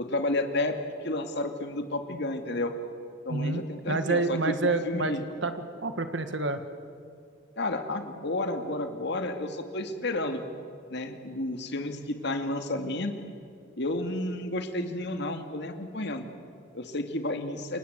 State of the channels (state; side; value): normal; both; correlation 0.10